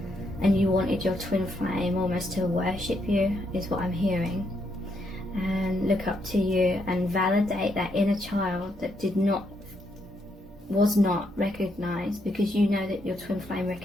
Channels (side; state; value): both; normal; correlation 0.77